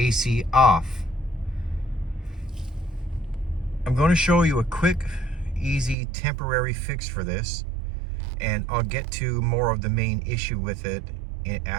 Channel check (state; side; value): drops out; left; at 6.0 s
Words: off. I'm going to show you a quick, easy, temporary fix for this, and I'll get to more of the main issue with it